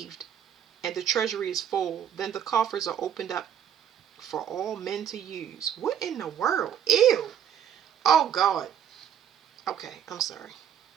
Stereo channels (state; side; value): quieter; left; 9.2 dB